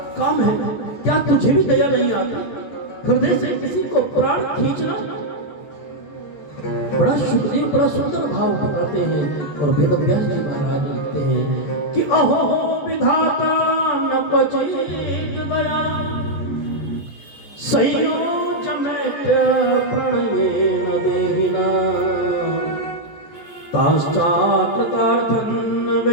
काम है? क्या तुझे भी दया नहीं आती? हृदय से किसी को प्राण खींचना। बड़ा सुखदेव बड़ा सुंदर भाव बताते हैं और वेद व्यास जी महाराज लिखते हैं कि अहो विधाता न बचेत दया, संयोज मैत्र प्रणयेन देहिना, ताश्चाकृतार्थं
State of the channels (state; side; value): late; right; 14 ms